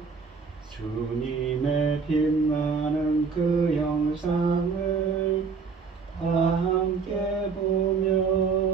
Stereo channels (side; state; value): left; quieter; 5.2 dB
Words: 주님의 빛나는 그 영상을 다 함께 보며